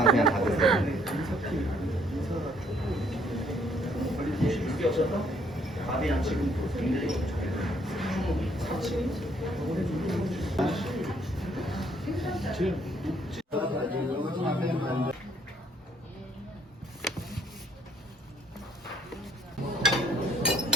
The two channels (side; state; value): both; normal; correlation 0.66